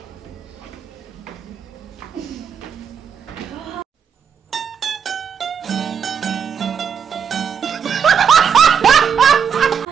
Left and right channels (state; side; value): quieter; left; 7.2 dB